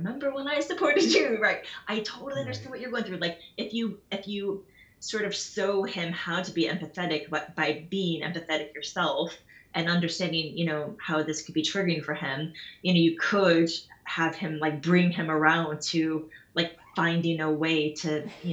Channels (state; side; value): identical; both; correlation 1.00